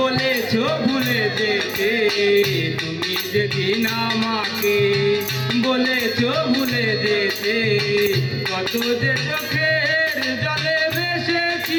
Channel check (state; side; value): identical; both; correlation 1.00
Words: ভুলে যেতে, তুমি যেদিন আমাকে বলেছ ভুলে যেতে, কত যে চোখের জলে